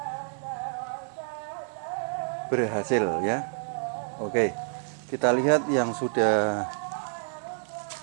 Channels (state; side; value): silent; left; digital silence